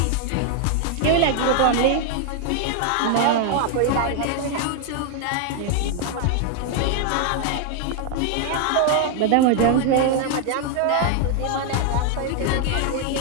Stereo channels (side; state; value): both; different; correlation 0.00